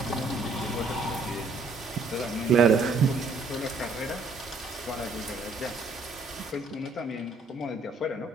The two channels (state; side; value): quieter; left; 3.4 dB